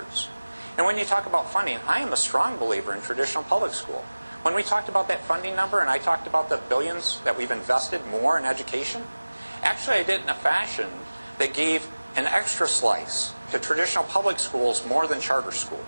And when you talk about funding, I am a strong believer in traditional public school. When we talked about that funding number and I talked about the billions that we've invested more in education, actually I did it in a fashion that gave an extra slice to traditional public schools more than charter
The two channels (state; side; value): inverted; both; correlation -1.00